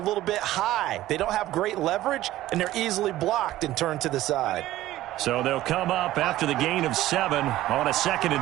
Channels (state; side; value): quieter; left; 15.1 dB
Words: bit high. They don't have great leverage, and they're easily blocked and turned to the side. So they'll come up after the gain of 7 on a 2nd